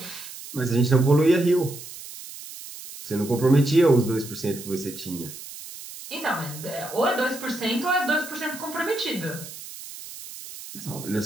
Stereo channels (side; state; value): right; noise; hiss, 13 dB below the sound